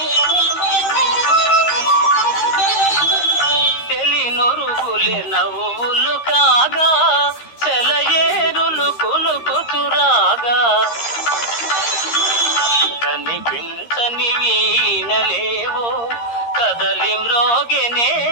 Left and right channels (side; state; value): right; late; 13 ms